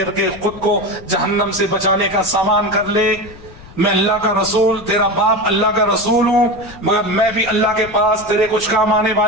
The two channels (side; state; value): left; noise; rumble, 20 dB below the sound